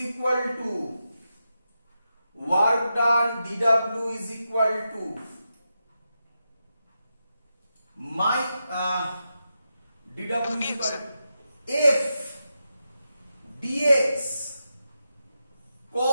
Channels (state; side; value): inverted; both; correlation -0.88